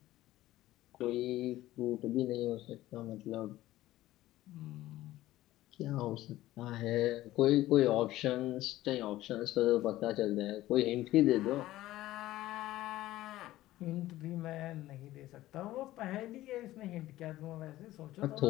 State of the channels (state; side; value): quieter; right; 15.7 dB